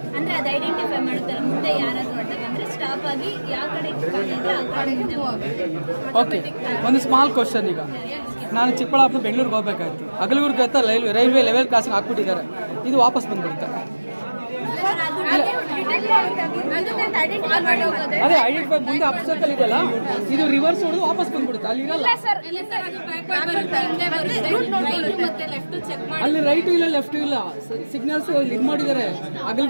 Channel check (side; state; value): both; inverted; correlation -1.00